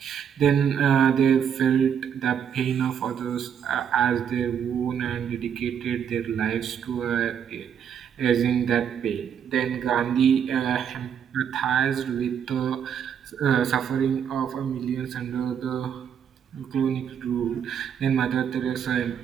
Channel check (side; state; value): left; quieter; 8.1 dB